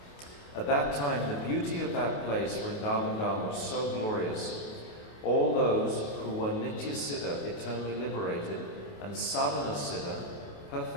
At that time, the beauty of that place, Vrindavan Dham, was so glorious. All those who were Nitya Siddha, eternally liberated, and Sadhana Siddha,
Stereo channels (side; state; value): right; late; 28 ms